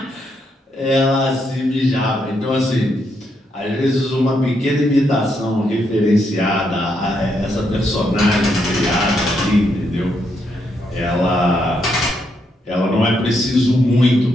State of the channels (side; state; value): both; normal; correlation 0.78